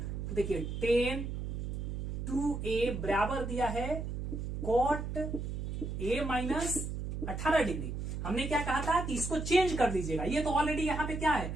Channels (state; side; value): noise; right; hum, 4 dB below the sound